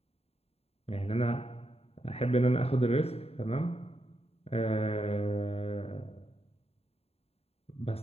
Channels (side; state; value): right; late; 0.29 ms